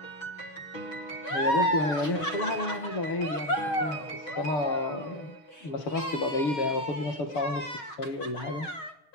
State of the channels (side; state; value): right; late; 6.3 ms